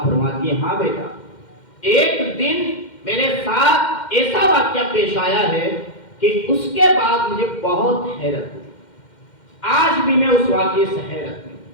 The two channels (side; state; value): right; late; 2.1 ms